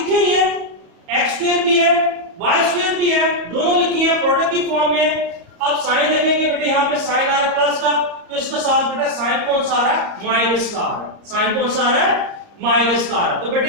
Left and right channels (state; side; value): late; left; 34 ms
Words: हुई है, x स्क्वायर भी है y स्क्वायर भी है, दोनों लिखी है प्रोडक्ट की फॉर्म में। अब साइन देखेंगे बेटे यहाँ पे साइन आ रहा है प्लस का तो इसके साथ बेटा साइन कौन सा आ रहा है माइनस का आ रहा है, साइन कौन सा आ रहा है माइनस का आ रहा है। तो